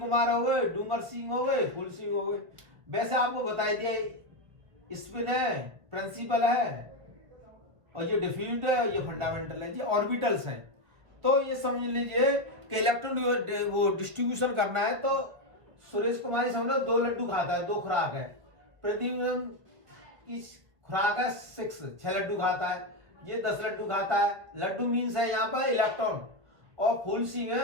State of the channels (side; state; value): left; late; 1.3 ms